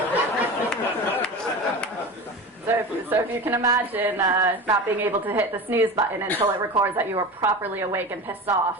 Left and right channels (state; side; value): normal; both; correlation 0.31